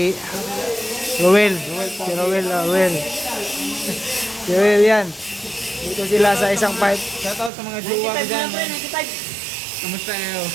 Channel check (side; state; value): left; drops out; at 7.5 s